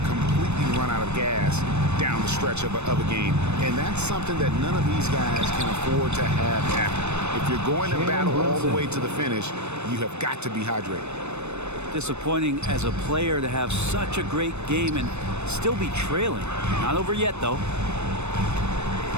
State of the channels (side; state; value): left; late; 0.81 ms